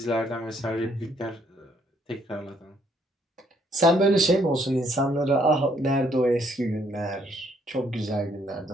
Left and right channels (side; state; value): both; normal; correlation 0.68